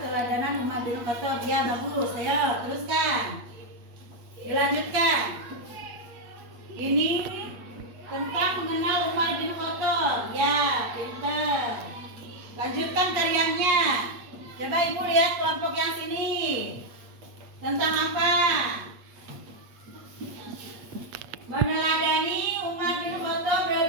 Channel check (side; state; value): left; late; 8.5 ms